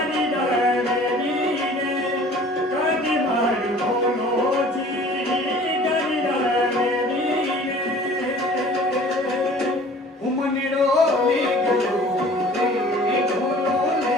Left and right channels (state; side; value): normal; both; correlation 0.48